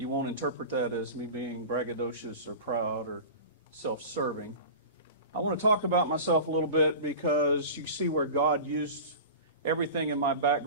won't interpret that as me being braggadocious or proud or self-serving. I want to talk about myself a little bit because you see where God used everything in my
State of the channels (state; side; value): inverted; both; correlation -0.34